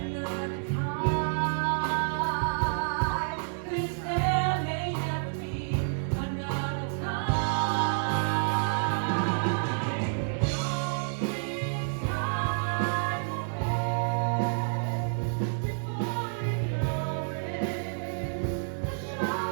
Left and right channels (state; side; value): silent; left; 58 dB below the other